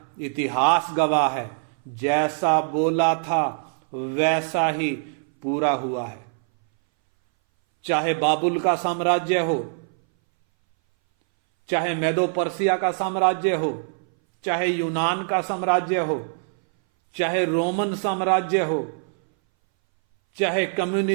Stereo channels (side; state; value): left; silent; 61 dB below the other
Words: इतिहास गवाह है, जैसा बोला था वैसा ही पूरा हुआ है। चाहे बाबुल का साम्राज्य हो, चाहे मेदो पर्सिया का साम्राज्य हो, चाहे यूनान का साम्राज्य हो, चाहे रोमन साम्राज्य हो, चाहे